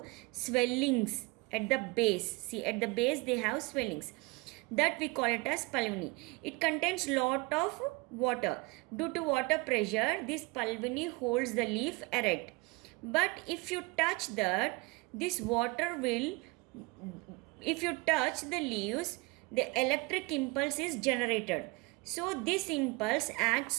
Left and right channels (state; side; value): quieter; left; 25.8 dB